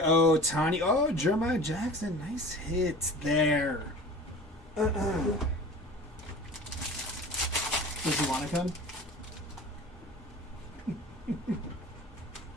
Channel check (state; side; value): normal; both; correlation 0.39